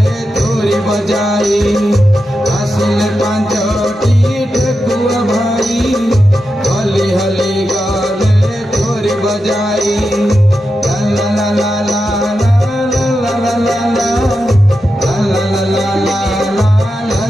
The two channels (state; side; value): normal; both; correlation 0.89